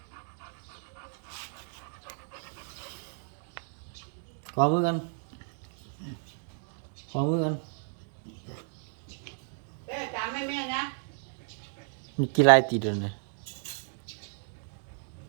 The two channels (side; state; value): left; silent; 55 dB below the other